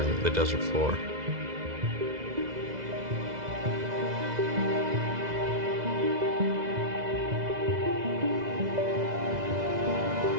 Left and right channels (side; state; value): left; late; 2.0 ms